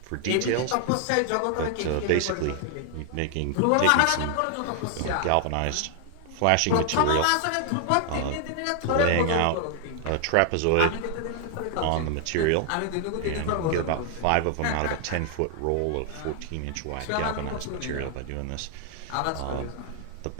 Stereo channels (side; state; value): both; different; correlation 0.00